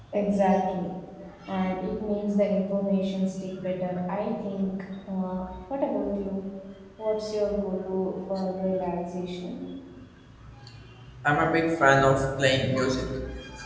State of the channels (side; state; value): both; identical; correlation 1.00